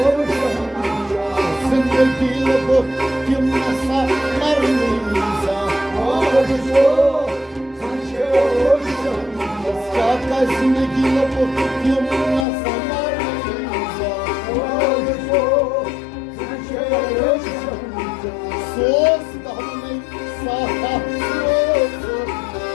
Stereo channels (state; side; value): drops out; right; at 12.5 s